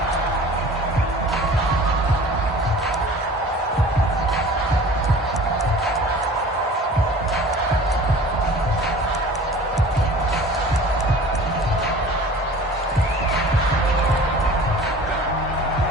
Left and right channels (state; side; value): normal; both; correlation 0.43